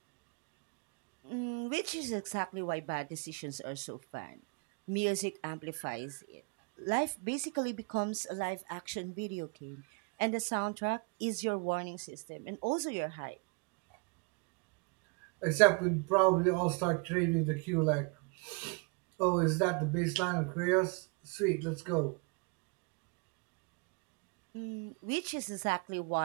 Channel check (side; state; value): left; quieter; 33.3 dB